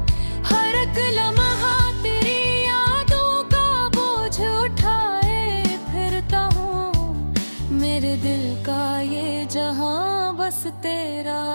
हर एक लम्हा तेरी यादों का बोझ उठाए फिरता हूँ। मेरे दिल का ये जहां बस तेरा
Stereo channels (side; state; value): both; inverted; correlation -1.00